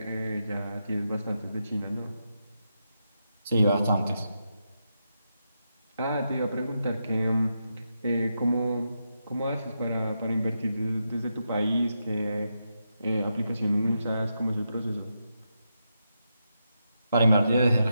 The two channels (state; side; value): inverted; both; correlation -0.85